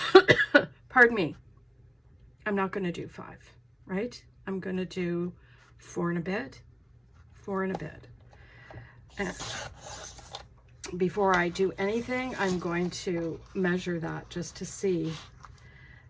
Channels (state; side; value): identical; both; correlation 1.00